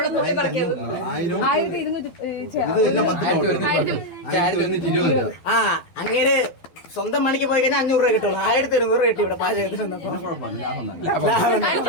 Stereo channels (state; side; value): late; right; 12 ms